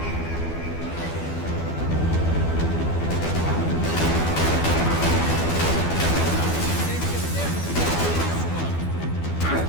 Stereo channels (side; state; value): right; late; 12 ms